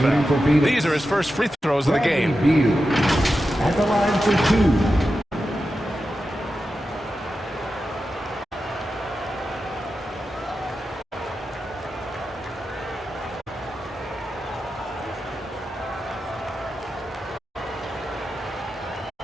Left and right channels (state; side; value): normal; both; correlation 0.91